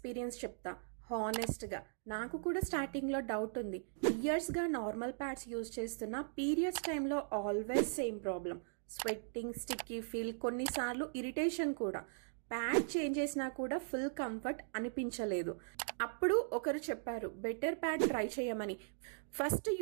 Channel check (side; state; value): left; silent; digital silence